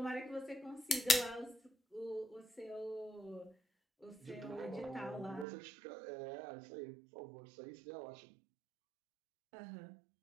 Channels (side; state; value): left; drops out; at 5.5 s